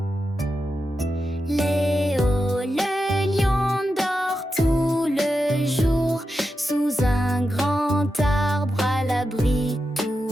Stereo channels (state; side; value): normal; both; correlation 0.89